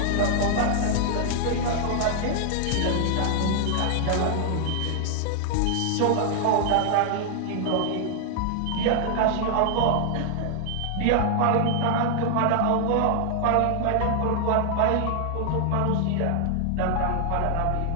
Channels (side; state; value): both; different; correlation 0.00